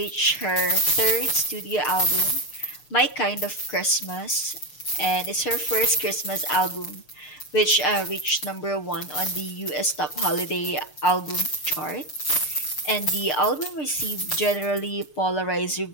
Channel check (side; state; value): right; late; 6.7 ms